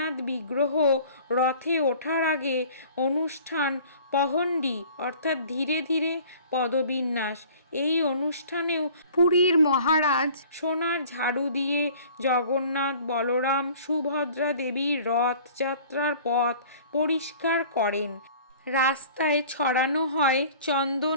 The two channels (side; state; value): both; inverted; correlation -0.48